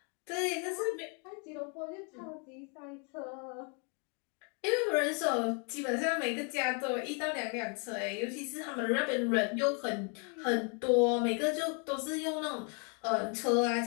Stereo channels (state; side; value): quieter; right; 37.0 dB